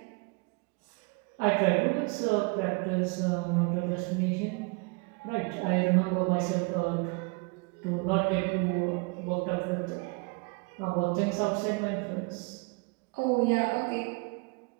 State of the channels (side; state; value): left; quieter; 30.6 dB